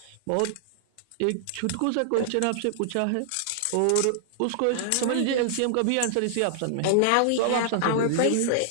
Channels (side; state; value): both; different; correlation -0.01